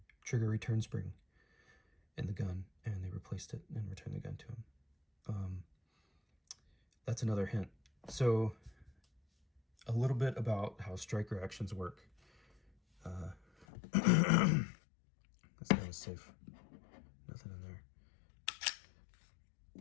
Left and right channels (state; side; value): drops out; right; at 13.7 s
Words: trigger return spring in the gun, and they replaced it and returned the gun to him. That's another hint. So a little bit about how striker actions work. This guy is safe. Nothing in there.